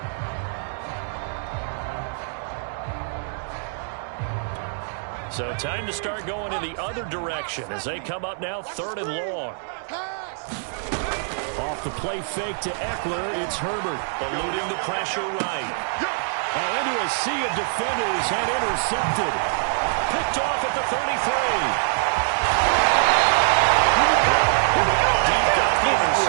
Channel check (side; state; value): left; silent; digital silence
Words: So time to start going in the other direction as they come up now 3rd and long. Off the play fake to Eckler, it's Herbert eluding the pressure right. Into a sea of defenders and intercepted. Picked off at the 33. Deep got the